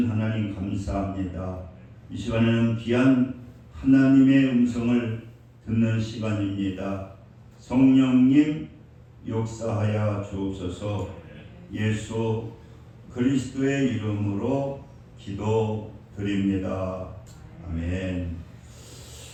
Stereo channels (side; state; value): both; identical; correlation 1.00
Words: 하나님 감사합니다. 이 시간에는 귀한 하나님의 음성을 듣는 시간입니다. 성령님 역사하여 주옵소서. 예수 그리스도의 이름으로 기도드립니다. 아멘.